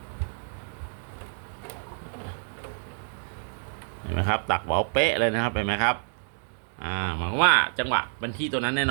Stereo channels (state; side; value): silent; left; 59 dB below the other